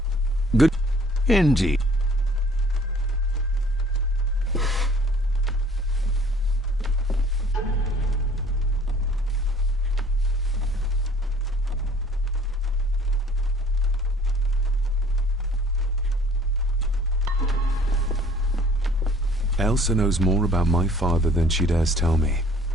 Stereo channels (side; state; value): both; normal; correlation 0.54